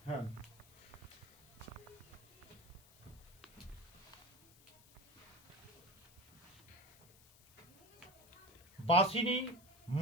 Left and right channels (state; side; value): noise; left; hiss, 25 dB below the sound